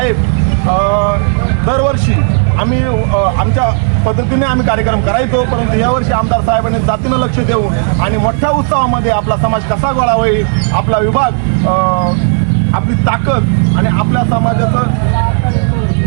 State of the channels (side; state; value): left; silent; 60 dB below the other